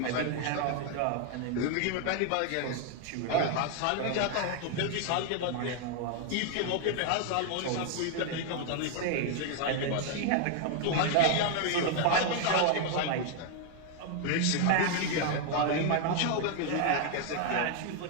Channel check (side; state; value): both; different; correlation 0.00